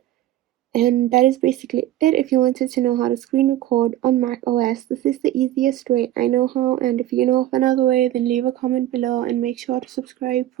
And that is basically it. If you wanted to know how to screen record on Mac OS, this is the easiest way I know how. And if you know of another way, then leave a comment below and make sure to subscribe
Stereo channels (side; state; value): left; quieter; 13.6 dB